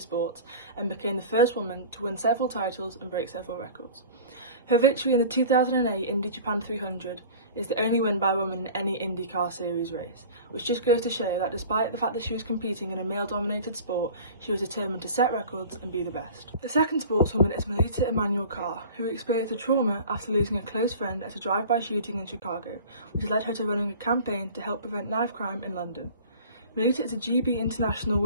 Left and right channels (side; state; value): both; inverted; correlation -0.41